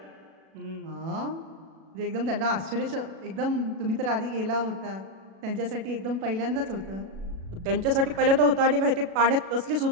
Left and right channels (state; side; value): late; left; 37 ms